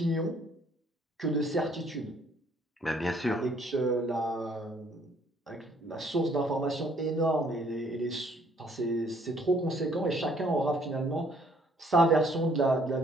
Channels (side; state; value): both; normal; correlation 0.63